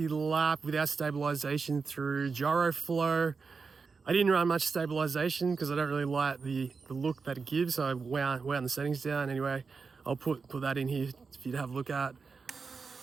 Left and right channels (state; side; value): quieter; left; 4.9 dB